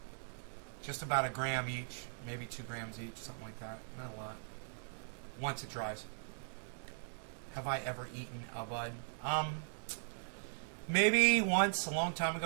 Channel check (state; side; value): silent; left; digital silence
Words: Just about a gram each, maybe 2 grams each, something like that. Not a lot. Once it dries. Have I ever eaten a bud? Maybe once, a long time